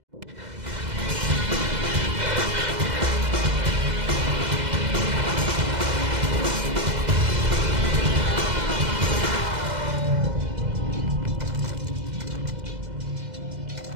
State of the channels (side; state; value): left; late; 2.0 ms